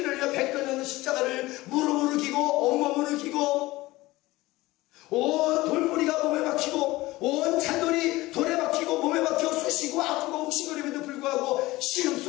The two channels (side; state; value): right; quieter; 19.3 dB